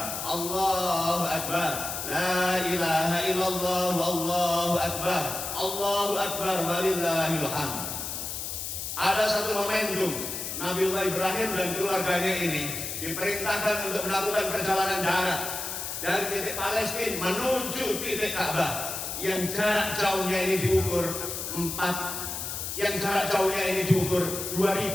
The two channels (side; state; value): left; noise; hiss, 5 dB below the sound